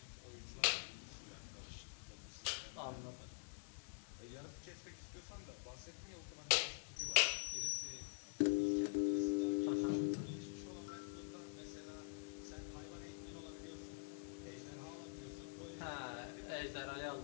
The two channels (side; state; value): right; silent; digital silence